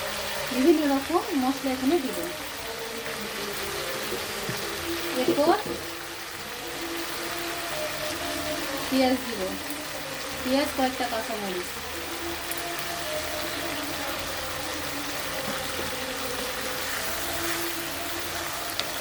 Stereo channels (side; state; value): both; identical; correlation 1.00